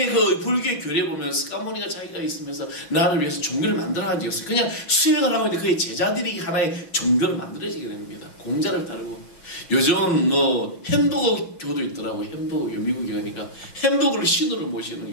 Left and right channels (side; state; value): right; late; 5.9 ms